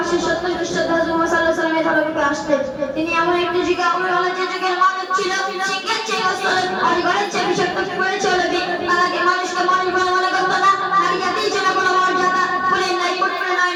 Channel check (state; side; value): identical; both; correlation 1.00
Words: তিনি এমন একটি যুগে যে যুগের মানুষ ছিল শিক্ষার চেয়ে অজগরের চেয়ে বিষাক্ত করে চলবে। তাকে মানুষকে মানুষ বলে মনে করতো না। নারী জাতির জন্য কোনো মর্যাদা বলে নাই করতে নয়